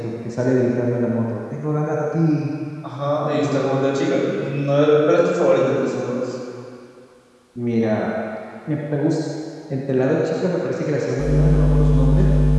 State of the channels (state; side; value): identical; both; correlation 1.00